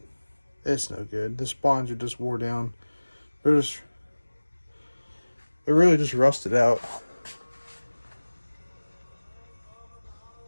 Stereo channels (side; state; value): both; inverted; correlation -1.00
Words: It's no good. The spawns are just wore down. They're really just rusted out.